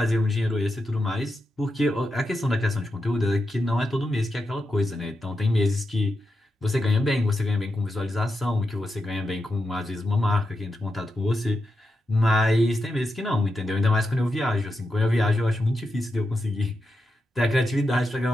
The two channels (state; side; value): normal; both; correlation 0.87